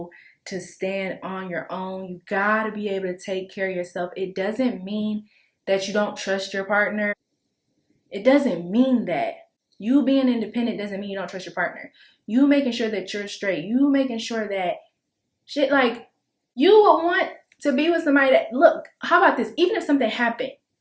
to stand on your own. You gotta be able to take care of yourself. It doesn't mean that you don't trust your partner. It doesn't mean that. You being independent doesn't mean you don't trust your partner. You making sure that you're straight. You making sure that shit, like, you would want to be with somebody that, look, how about this? Even if something happened,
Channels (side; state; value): both; identical; correlation 1.00